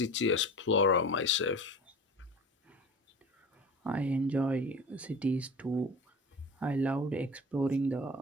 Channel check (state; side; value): normal; both; correlation 0.36